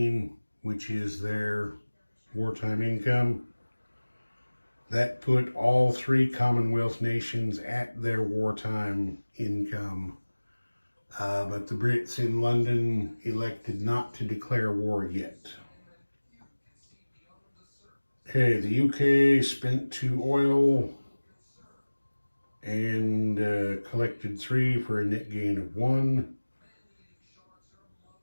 which is their wartime income. That put all 3 Commonwealth nations at their wartime income. But the Brits in London elected not to declare war yet. Okay, the UK spent 2 oil and collected 3 for a net gain of 1.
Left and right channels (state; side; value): inverted; both; correlation -1.00